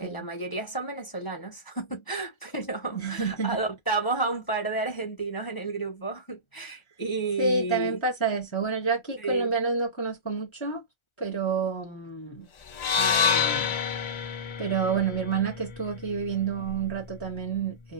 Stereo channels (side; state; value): right; late; 1.4 ms